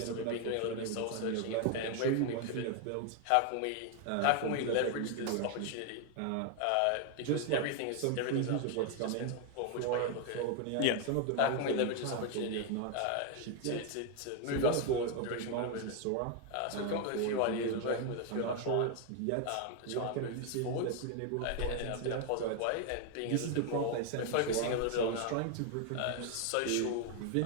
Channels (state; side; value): different; both; correlation 0.01